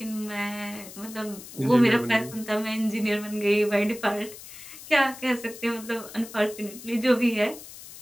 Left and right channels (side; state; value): left; noise; hiss, 15 dB below the sound